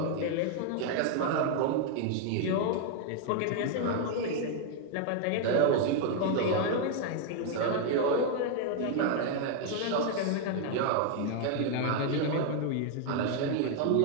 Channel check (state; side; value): different; both; correlation 0.00